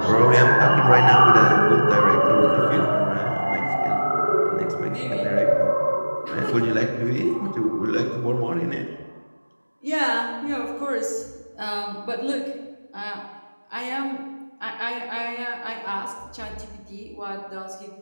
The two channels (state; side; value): inverted; both; correlation -1.00